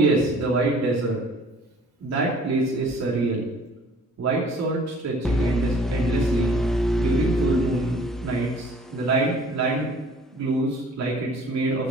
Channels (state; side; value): normal; both; correlation 0.52